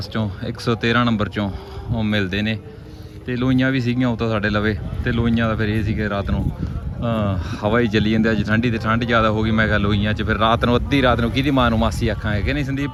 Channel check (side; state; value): both; identical; correlation 1.00